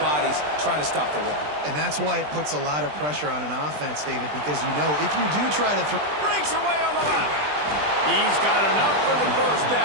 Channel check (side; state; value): left; late; 20 ms